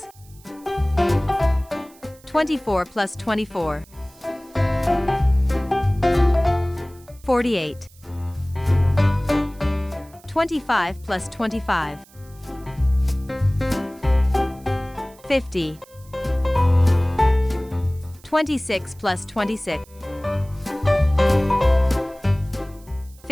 24 plus 24. 48. 25 plus 25. 50. 26 plus 26.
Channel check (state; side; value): noise; right; hiss, 26 dB below the sound